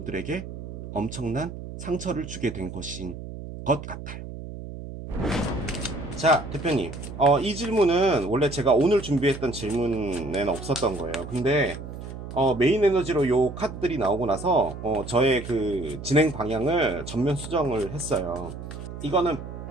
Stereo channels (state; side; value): noise; right; hum, 10 dB below the sound